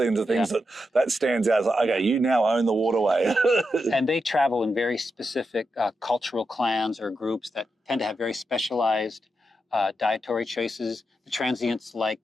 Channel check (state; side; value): normal; both; correlation 0.86